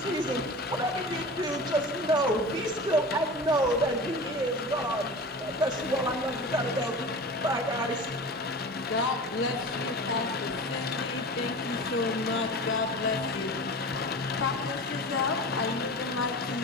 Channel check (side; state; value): both; normal; correlation 0.33